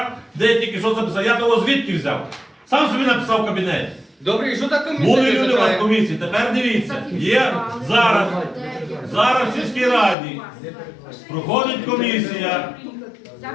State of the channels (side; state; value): right; drops out; at 10.2 s